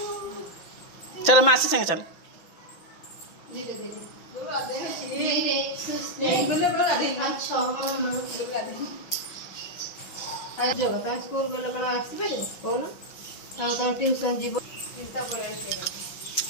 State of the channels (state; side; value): late; right; 5.9 ms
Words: चलो मासी संगे चल स्कूल गला कौन ट्यूशन जीव